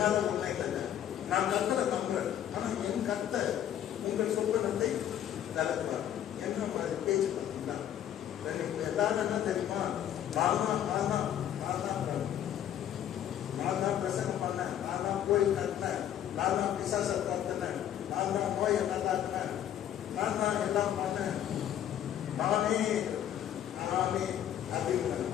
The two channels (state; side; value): quieter; right; 10.6 dB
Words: உண்மை இல்லைங்க, நான் கத்தரை நம்புறேன், ஆனா என் கத்தர் உங்கள் சொப்பனத்தை விளக்குவார். என்ன மாதிரி பேச்சு பார்த்தீங்களா? எல்லாரும் என்ன தெரியுமா, நான் தான் பிரசங்கம் பண்ணேன், நான் தான் கோயில் கட்டினேன், நான் தான் பிசாசை பார்த்தேன், நான் தான் நோயை நல்லாக்குனேன், நான் தான் எல்லாம் பண்ணேன், நானே அப்படின்னு